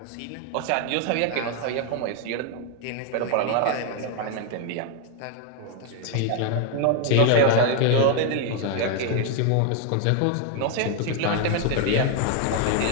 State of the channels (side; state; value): both; different; correlation 0.01